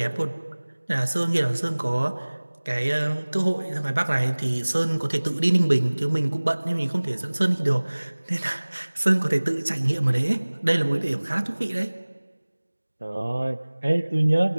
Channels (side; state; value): both; inverted; correlation -1.00